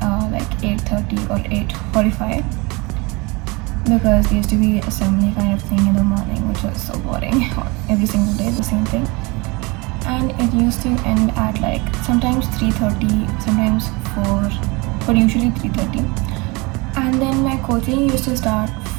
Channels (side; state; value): left; quieter; 26.2 dB